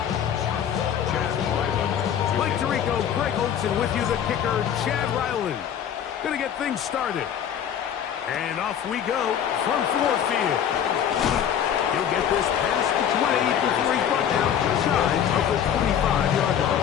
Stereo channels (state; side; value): quieter; right; 9.1 dB